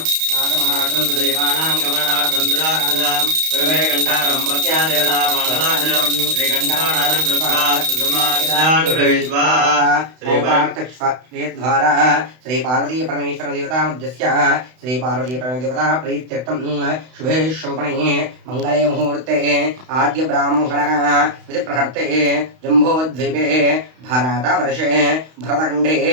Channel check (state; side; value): late; left; 32 ms